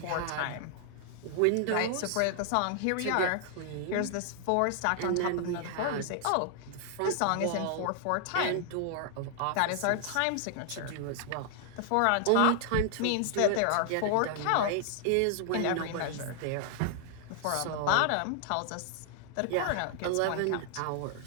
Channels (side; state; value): both; different; correlation 0.00